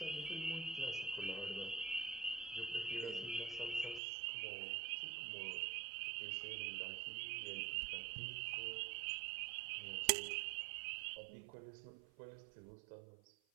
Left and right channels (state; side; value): drops out; left; at 4.0 s